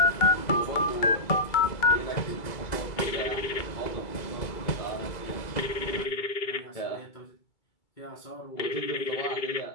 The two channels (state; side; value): late; right; 2.2 ms